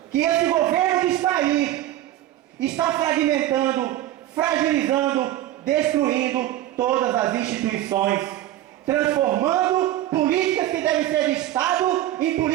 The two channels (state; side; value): quieter; left; 13.8 dB